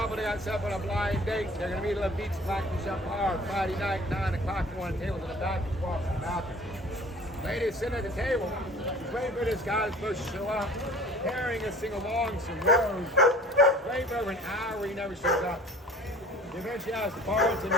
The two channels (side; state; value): both; normal; correlation 0.47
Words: that got set up on a blind date. They're going to meet at Lafitte's Blacksmith Shop Bar Friday night, 9 o'clock. One table in the back and walk in the bathroom. Lady sitting at the table, waiting for this guy that's supposed to show up, carrying a single long some rose. Waiting for over an hour, he never shows up. She eventually asks the bartender